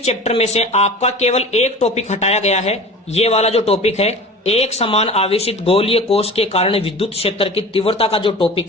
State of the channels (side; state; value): both; normal; correlation 0.37